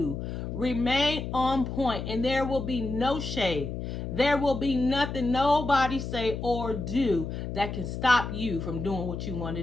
remain on point, and there will be no shade. There will be nothing nobody say or do that can stop you from doing what you want to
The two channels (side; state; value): left; noise; hum, 5 dB below the sound